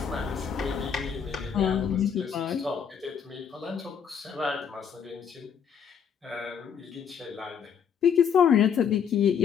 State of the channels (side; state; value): right; quieter; 7.4 dB